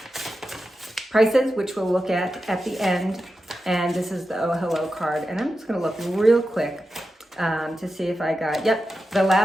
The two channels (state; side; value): normal; both; correlation 0.90